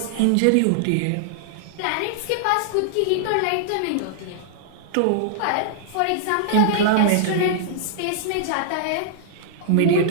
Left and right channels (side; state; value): both; different; correlation -0.01